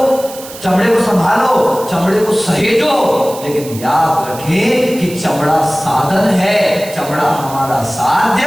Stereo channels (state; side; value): noise; right; hiss, 15 dB below the sound